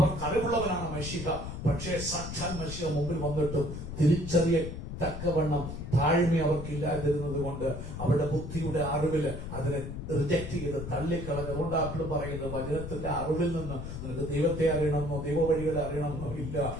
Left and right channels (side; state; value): left; noise; rumble, 7 dB below the sound